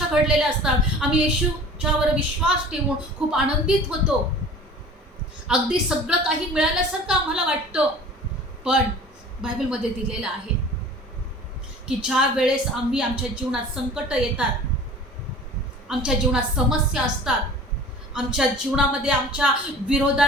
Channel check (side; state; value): both; normal; correlation 0.43